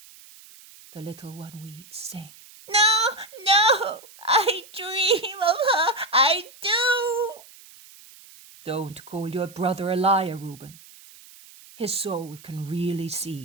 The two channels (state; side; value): noise; right; hiss, 22 dB below the sound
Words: The little one weeps, saying, No, I dream of her. I do. Don't call your brother a liar, Reuben. His soul can really